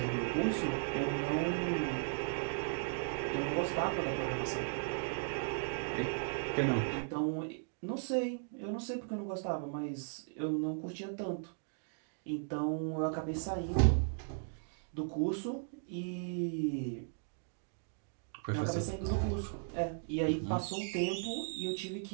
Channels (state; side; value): silent; left; digital silence